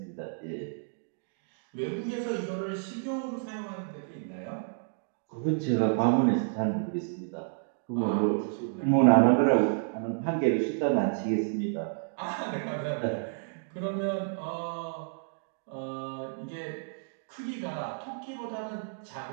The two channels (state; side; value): silent; left; digital silence